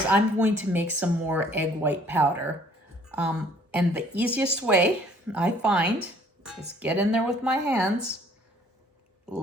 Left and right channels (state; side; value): normal; both; correlation 0.58